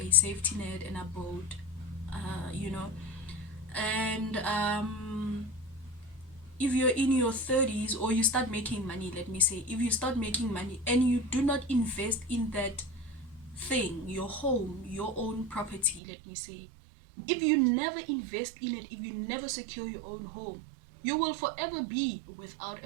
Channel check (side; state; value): left; drops out; at 16.0 s